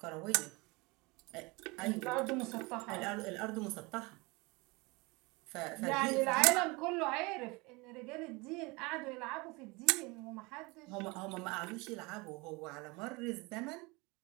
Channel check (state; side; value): quieter; left; 25.7 dB